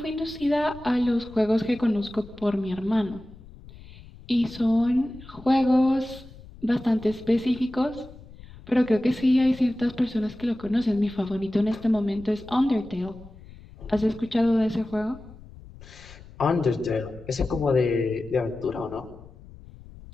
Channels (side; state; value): left; noise; rumble, 19 dB below the sound